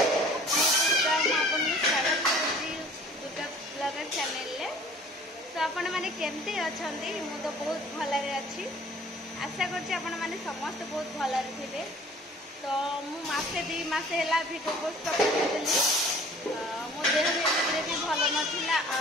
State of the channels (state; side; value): normal; both; correlation 0.50